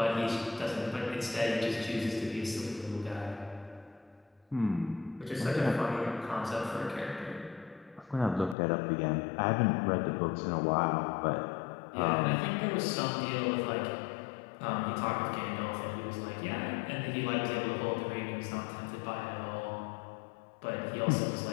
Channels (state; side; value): drops out; right; at 8.6 s